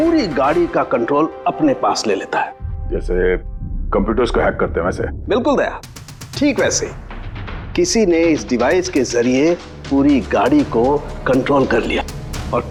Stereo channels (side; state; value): both; identical; correlation 1.00